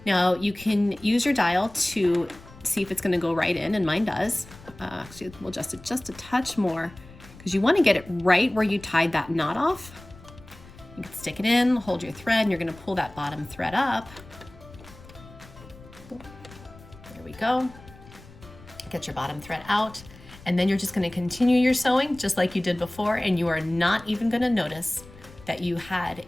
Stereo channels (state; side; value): noise; left; rumble, 20 dB below the sound